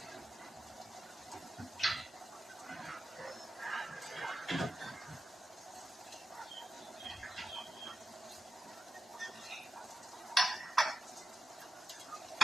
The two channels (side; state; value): both; normal; correlation 0.90